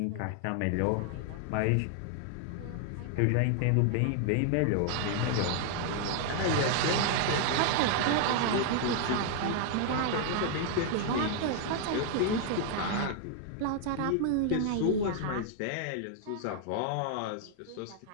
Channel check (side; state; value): both; different; correlation 0.00